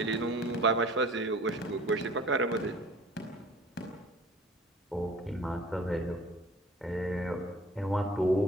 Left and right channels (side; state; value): both; normal; correlation 0.48